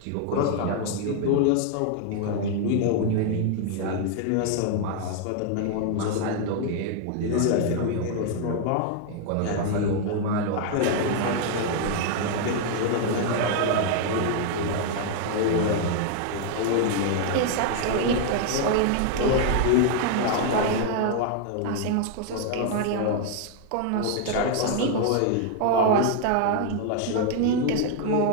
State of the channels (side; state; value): both; different; correlation 0.00